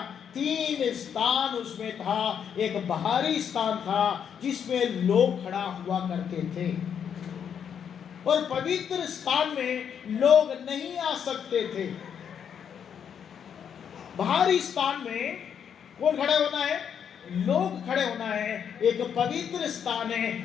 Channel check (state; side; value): quieter; right; 8.0 dB